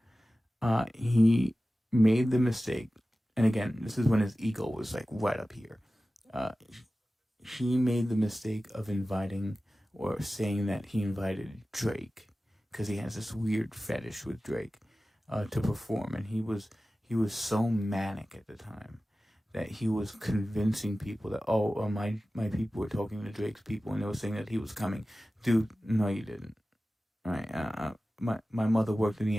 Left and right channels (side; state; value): both; normal; correlation 0.96